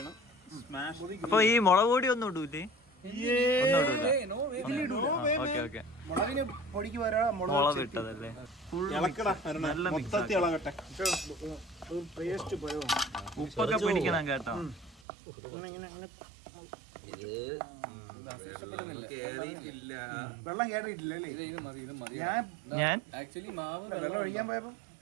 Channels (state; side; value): drops out; left; at 15.0 s